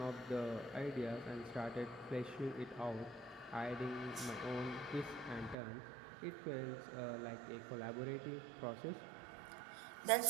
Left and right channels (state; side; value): drops out; left; at 5.6 s